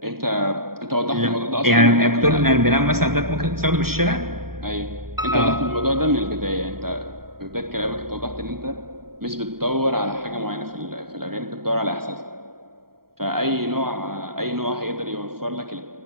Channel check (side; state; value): left; late; 0.94 ms